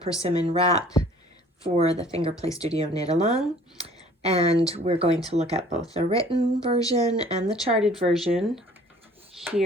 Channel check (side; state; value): both; normal; correlation 0.53